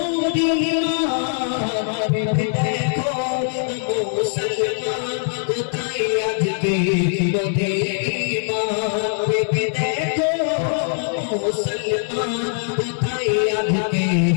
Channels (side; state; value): right; silent; digital silence